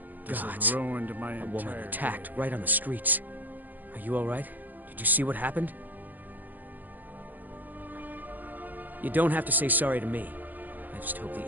This has ruined my A woman attacked right on the streets. Are you all right? Did you see what happened? You don't have to say sorry to me. I just hope the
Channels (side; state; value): left; late; 0.084 ms